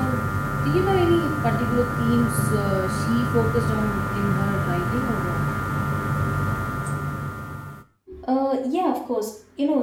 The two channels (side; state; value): both; identical; correlation 1.00